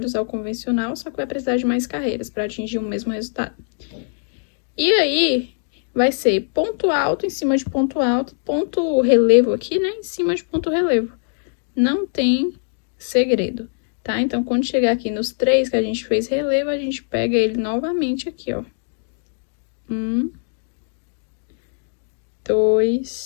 usar o convencional, só que vai precisar de mais carreiras para atingir o mesmo resultado. E aí, vai ser ponto alto em cima de ponto alto, ponto relevo aqui, né, em cima de ponto relevo. Não tem segredo, tá? Então, quando chegar aqui nos 3 que a gente fez relevo, a gente pega ele novamente aqui, ó. 1,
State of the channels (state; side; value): silent; right; digital silence